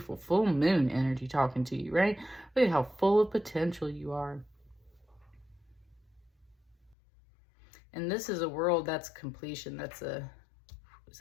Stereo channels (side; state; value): right; drops out; at 7.0 s